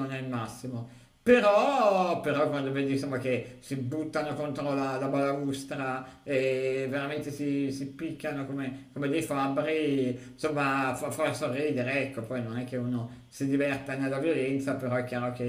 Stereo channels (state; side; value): identical; both; correlation 1.00